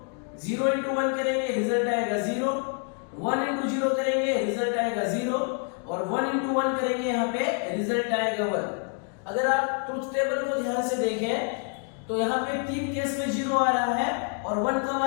0 इंटू 1 करेंगे रिजल्ट आएगा 0, 1 इंटू 0 करेंगे रिजल्ट आएगा 0, और 1 इंटू 1 करेंगे यहाँ पे रिजल्ट आएगा 1। अगर आप ट्रुथ टेबल को ध्यान से देखें तो यहाँ पे 3 केस में 0 आ रहा है और 1 कब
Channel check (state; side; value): quieter; right; 38.9 dB